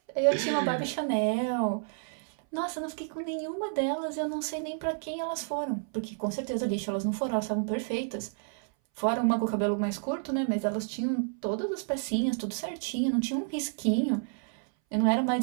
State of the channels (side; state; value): left; silent; 58 dB below the other